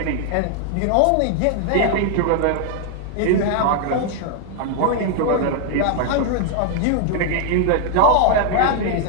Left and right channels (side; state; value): both; different; correlation 0.00